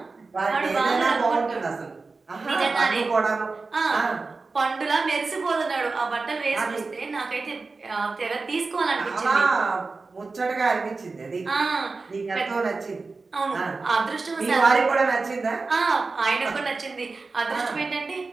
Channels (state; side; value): quieter; left; 4.0 dB